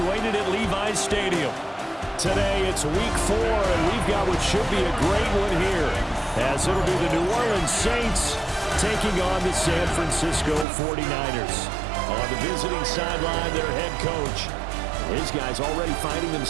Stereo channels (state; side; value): drops out; left; at 10.7 s